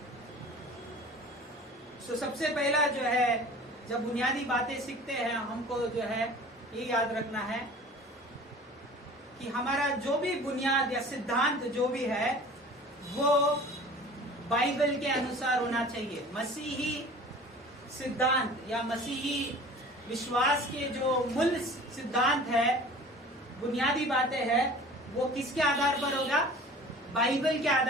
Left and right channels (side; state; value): both; normal; correlation 0.43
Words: तो सबसे पहला जो है जब बुनियादी बातें सीखते हैं हमको जो है ये याद रखना है कि हमारा जो भी बुनियाद या सिद्धांत जो भी है वो बाइबल के अनुसार होना चाहिए। मसीही सिद्धांत या मसीही विश्वास के जो मूल सिद्धांत है, बुनियादी बातें हैं, वो किसके आधार पर होगा? बाइबल के